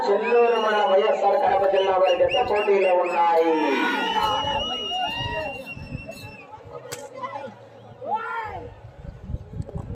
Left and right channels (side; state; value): both; identical; correlation 1.00